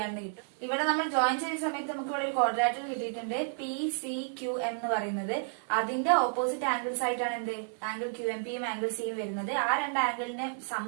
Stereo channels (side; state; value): left; silent; 57 dB below the other